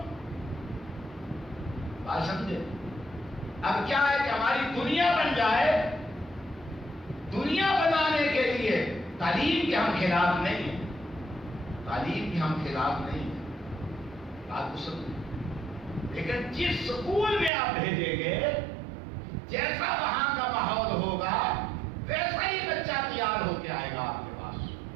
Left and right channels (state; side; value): drops out; left; at 17.5 s